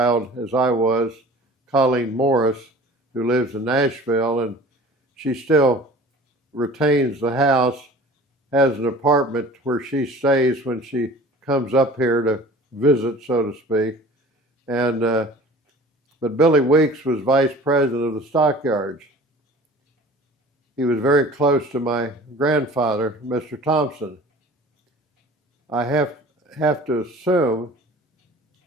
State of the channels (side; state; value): both; normal; correlation 0.44